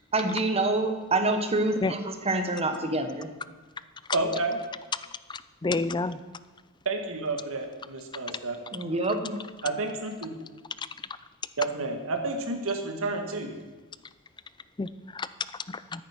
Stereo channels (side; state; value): both; normal; correlation 0.06